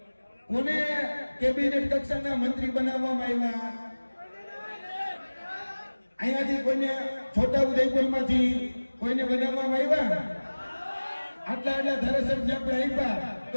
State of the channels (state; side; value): inverted; both; correlation -1.00